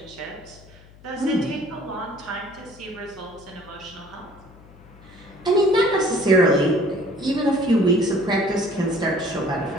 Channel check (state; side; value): noise; left; hum, 23 dB below the sound